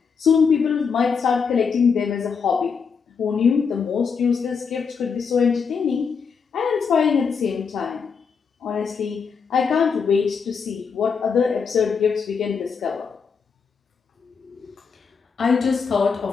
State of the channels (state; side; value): quieter; right; 5.9 dB